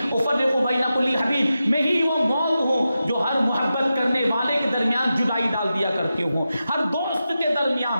افرق بین کل حبیب, میں ہی وہ موت ہوں جو ہر محبت کرنے والے کے درمیان جدائی ڈال دیا کرتی ہوں, ہر دوست کے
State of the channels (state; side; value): inverted; both; correlation -0.91